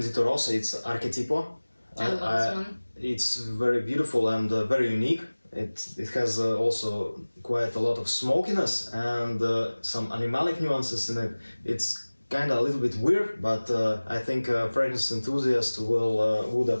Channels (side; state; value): both; inverted; correlation -1.00